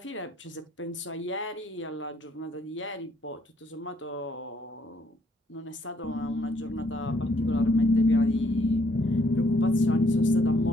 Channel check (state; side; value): normal; both; correlation 0.68